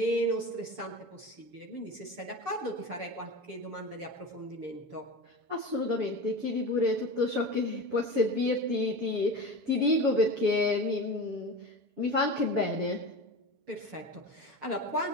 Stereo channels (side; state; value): left; late; 7.1 ms